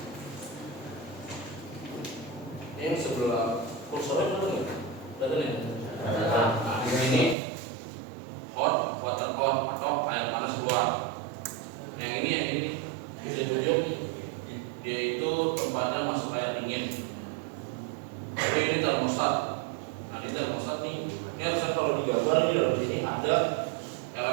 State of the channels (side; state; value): left; drops out; at 7.4 s